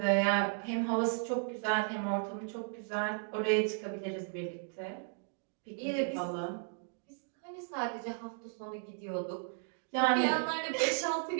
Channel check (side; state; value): left; silent; digital silence